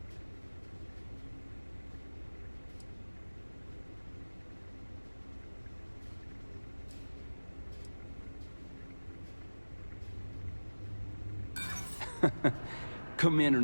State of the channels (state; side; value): inverted; both; correlation -1.00